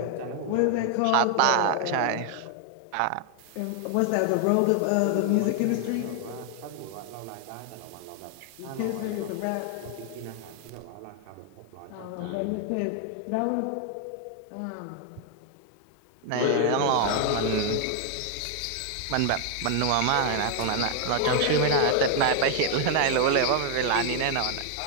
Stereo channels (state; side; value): different; both; correlation 0.00